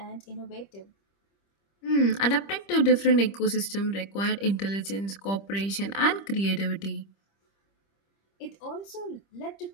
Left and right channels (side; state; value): right; late; 25 ms